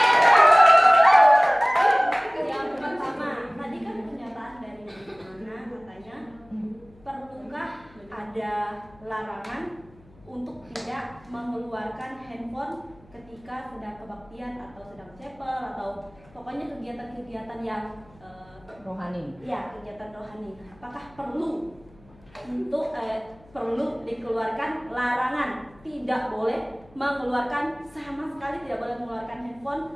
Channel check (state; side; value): noise; left; hum, 27 dB below the sound